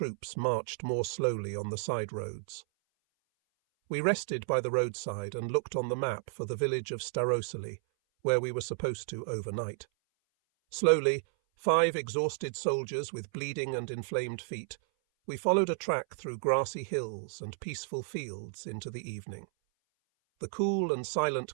marched more slowly on the side roads. We rested by the roadside and looked on the map for the village of Starosely, where we were supposed to overnight. Slowly, 5 exhausted soldiers with bleeding and inflamed feet, we followed a track through grassy hills and peaceful fields into the evening. The cool and silent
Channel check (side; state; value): left; silent; 56 dB below the other